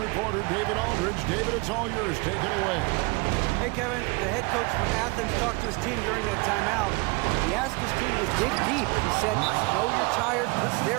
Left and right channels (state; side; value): quieter; left; 27.6 dB